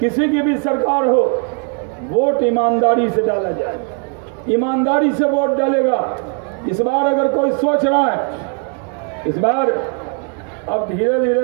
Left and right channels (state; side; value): quieter; left; 39.5 dB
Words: किसी की भी सरकार हो, वोट ईमानदारी से डाला जाए। ईमानदारी से वोट डालेगा। इस बार अगर कोई सोच रहा है, इस बार अब धीरे